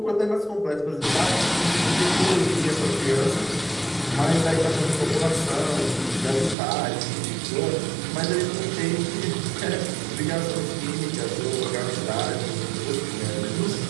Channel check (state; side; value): drops out; left; at 6.6 s